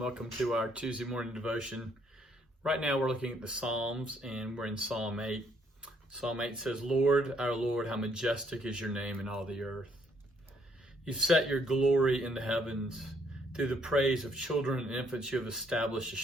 to our Tuesday morning devotion. Right now, we're looking at the Psalms, and we're in Psalm 8. Psalm 8 says, Lord, our Lord, how majestic is your name in all the earth. You've set your glory in the heavens. Through the praise of children and infants, you have established a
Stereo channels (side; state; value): both; normal; correlation 0.69